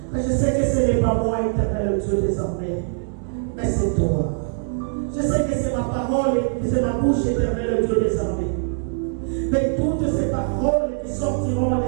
Mais je sais que ce n'est pas moi, éternel Dieu, désormais, mais c'est toi. Je sais que c'est ma parole et c'est ma bouche, éternel Dieu, désormais. Mais toutes ces paroles qui sortiront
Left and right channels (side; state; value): left; silent; digital silence